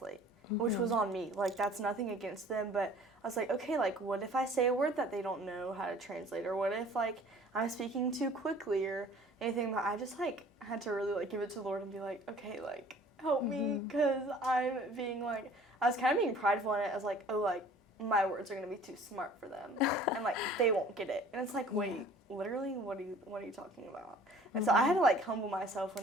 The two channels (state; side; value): normal; both; correlation 0.50